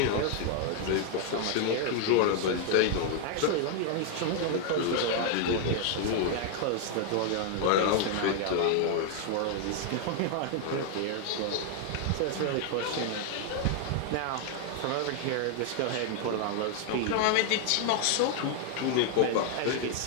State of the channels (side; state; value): both; different; correlation 0.00